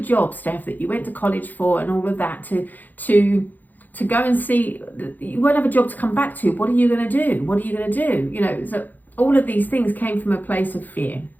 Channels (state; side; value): late; right; 0.084 ms